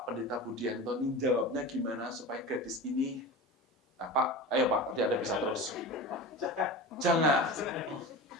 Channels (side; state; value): both; normal; correlation 0.30